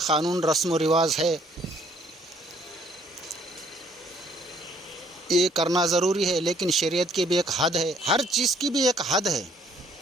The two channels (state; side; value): normal; both; correlation 0.63